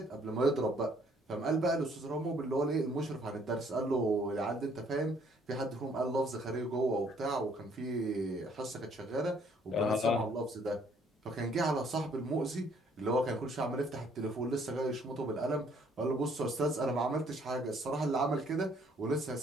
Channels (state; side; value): normal; both; correlation 0.64